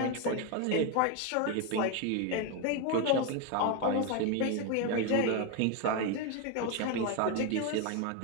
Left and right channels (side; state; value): both; different; correlation 0.02